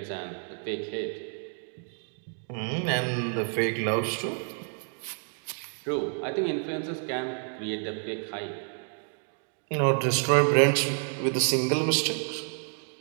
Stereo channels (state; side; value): silent; left; 57 dB below the other